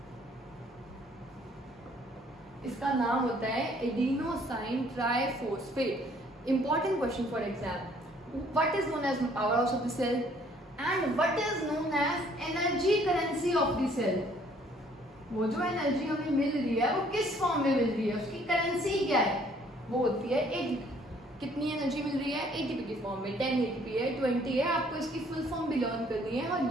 इसका नाम होता है adenosine triphosphate. Important question for exam, what is known as power house of the cell and what is known as energy currency of the cell. वो जो एनर्जी हमें मिल रही है वो किस फॉर्म में मिल रही है, उसकी करेंसी क्या है? वो होती है एटीपी। कितनी एनर्जी मिल रही है? एटीपी की फॉर्म में। 10 एटीपी है, 20 है। आपको इसकी फुल फॉर्म भी लर्न करनी है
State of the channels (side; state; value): both; normal; correlation 0.61